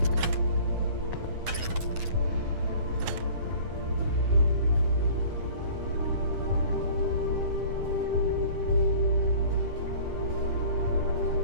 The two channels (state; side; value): late; left; 9.8 ms